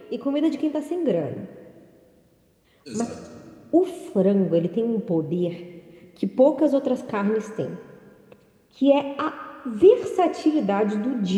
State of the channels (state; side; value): identical; both; correlation 1.00